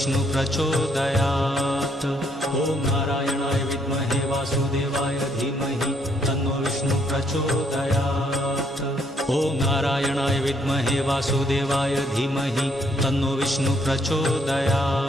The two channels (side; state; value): both; normal; correlation 0.70